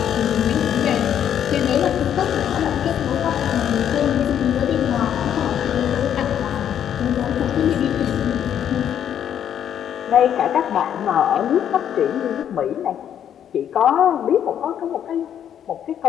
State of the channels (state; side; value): quieter; right; 9.6 dB